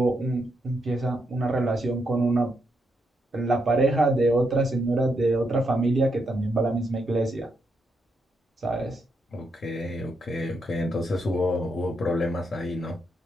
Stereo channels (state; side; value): normal; both; correlation 0.80